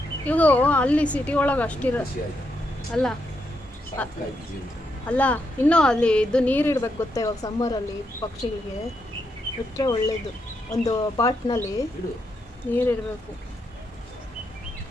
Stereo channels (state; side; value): normal; both; correlation 0.81